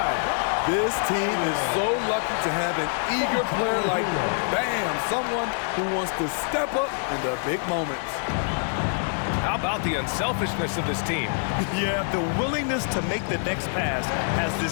This team is so lucky to have an eager player like, bam, someone who wants to step up in the big moments. How about the unselfishness of this team? Yeah, the willingness to make the next pass has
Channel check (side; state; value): right; silent; 61 dB below the other